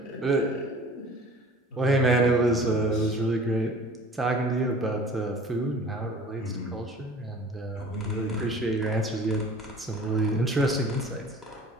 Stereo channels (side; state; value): both; normal; correlation 0.45